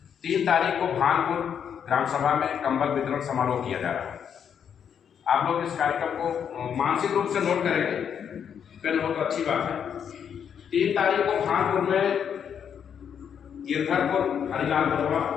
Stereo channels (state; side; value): quieter; right; 8.0 dB